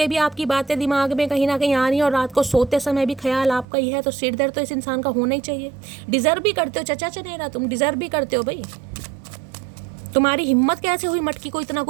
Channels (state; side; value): drops out; left; at 3.7 s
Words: भी आपकी बातें दिमाग में कहीं ना कहीं आ रही हैं, और रात को सोते समय भी ख्याल आपका ही है, तो सिर दर्द तो इस इंसान का होना ही चाहिए। डिजर्व भी करते हो चचा चनेरा, तुम डिजर्व भी करते हो भाई। तुम्हारी हिम्मत कैसे हुई मटकी को इतना